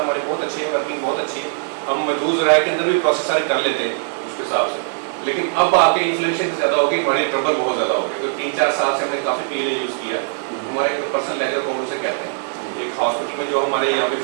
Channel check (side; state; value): left; silent; 64 dB below the other